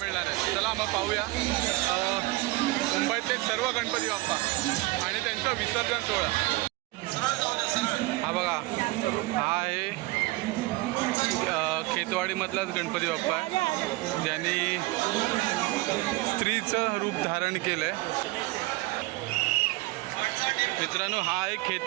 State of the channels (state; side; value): quieter; left; 20.9 dB